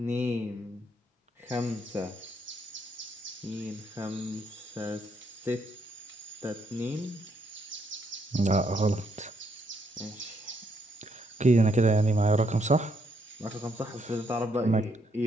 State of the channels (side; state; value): both; normal; correlation 0.74